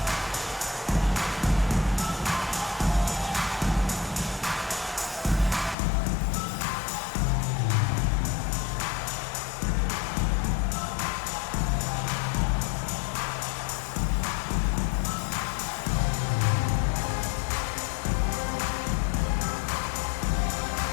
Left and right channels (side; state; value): right; drops out; at 5.8 s